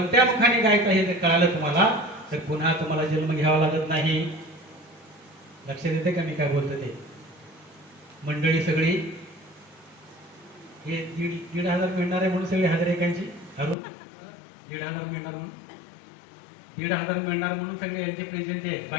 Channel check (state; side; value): drops out; right; at 13.8 s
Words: मुखाने गायचा हे जर कळालं तुम्हाला तर पुन्हा तुम्हाला जन्म घ्यावा लागत नाही. लक्षात येते का मी काय बोलतो ते? मंडळी सगळी हे 1,500 मिळणार आहे म्हणून सगळी हजर एकांची अरुण 1,500 मिळणार म्हणून 1,500 मिळणार म्हणून सगळे यांचे प्रेझेंट आहे.